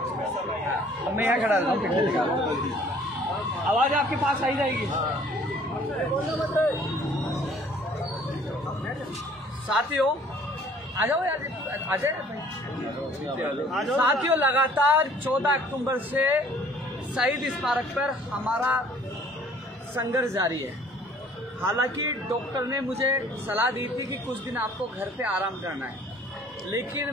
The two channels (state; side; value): normal; both; correlation 0.55